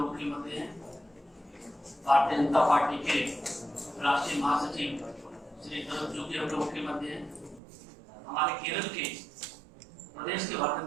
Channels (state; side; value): drops out; left; at 7.6 s